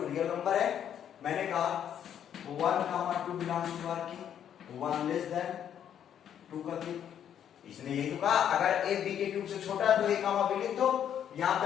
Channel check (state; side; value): quieter; right; 9.4 dB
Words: रियल नंबर है, मैंने कहा 1, 2 बिलोंग्स टू आर की 1 लेस देन 2 का क्यूब। इसने यही तो कहा अगर ए बी के क्यूब से छोटा है तो ए कामा बी लिख दो। यहाँ पे